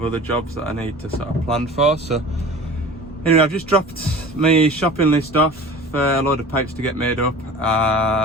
other jobs that I need to sort of plan for. So anyway, I've just dropped my shopping list off for a load of pipes to get made up.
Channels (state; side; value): normal; both; correlation 0.40